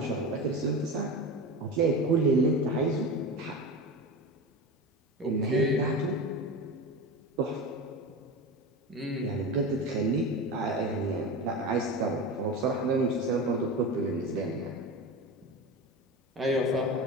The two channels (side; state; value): both; normal; correlation 0.26